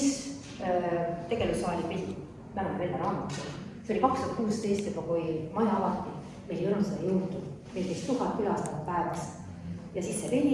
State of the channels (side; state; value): both; identical; correlation 1.00